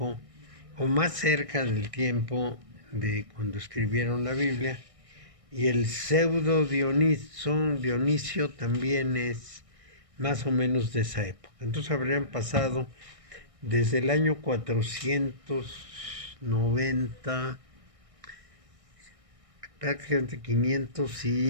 o más cerca del tiempo de cuando escribieron la Biblia. Y el pseudo Dionisio también es más o menos de esa época. Entonces habrían pasado desde el año 490, prácticamente 500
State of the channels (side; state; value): left; late; 1.6 ms